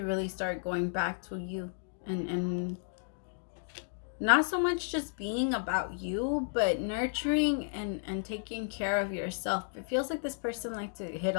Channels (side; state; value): right; silent; digital silence